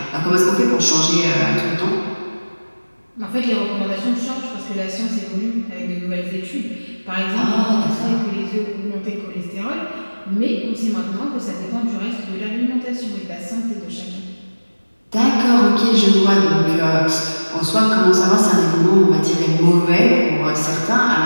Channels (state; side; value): inverted; both; correlation -1.00